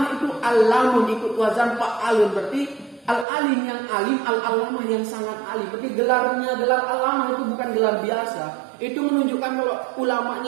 itu alamun ikut wazan fa'alun, berarti al-alim yang alim, al-allamah yang sangat alim. Berarti gelarnya gelar allamah itu bukan gelar biasa. Itu menunjukkan kalau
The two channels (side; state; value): left; drops out; at 3.2 s